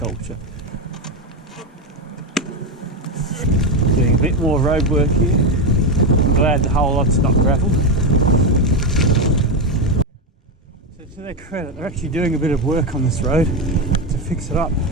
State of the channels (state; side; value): normal; both; correlation 0.10